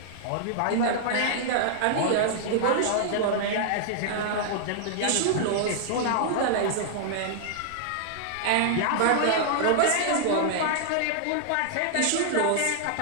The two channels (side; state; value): both; different; correlation -0.01